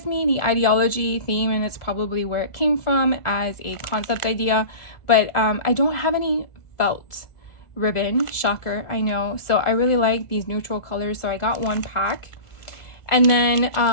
me the ideology theme, and it's probably where it came from as a concept idea. But I don't have any felt ribbon, shocker, I know. So I really like these neutral colors, so I got one pack. And then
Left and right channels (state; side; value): late; right; 1.4 ms